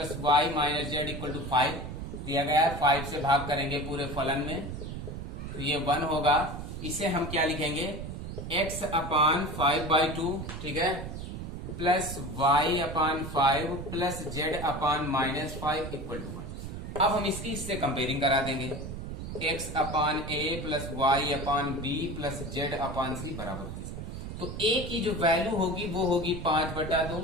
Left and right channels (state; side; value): noise; right; rumble, 7 dB below the sound